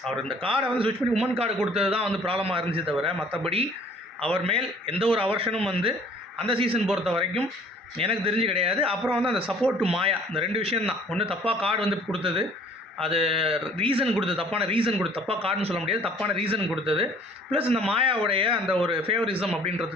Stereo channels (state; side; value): normal; both; correlation 0.54